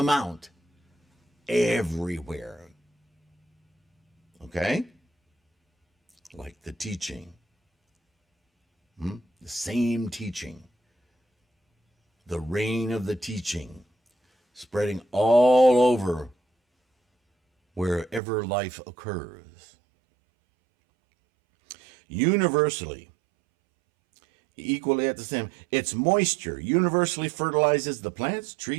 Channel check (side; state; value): left; drops out; at 18.2 s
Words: everywhere. Okay? Like the teaching. The same teaching. The rain of the teaching spreading all over wherever life occurs. Universally, equally at the same, its moisture universally fertilizes the plants,